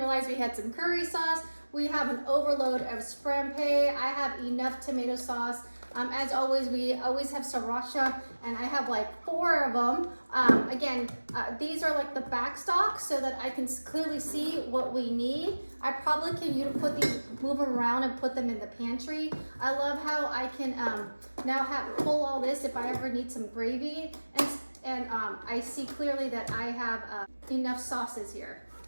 we had some curry sauce. We have an overload of scrampe. I have enough tomato sauce. As always, we always have sriracha, and I have like 4 of them. Again, these are like the back stock so that I can clearly see what we need. I probably can move them around and put them in the pantry. I love how I can now pull all this if I ever need some gravy, and I see clearly that I have enough sauces here.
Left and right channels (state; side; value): inverted; both; correlation -1.00